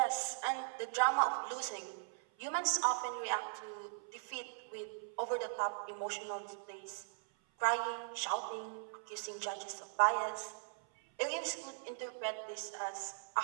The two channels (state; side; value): silent; left; 52 dB below the other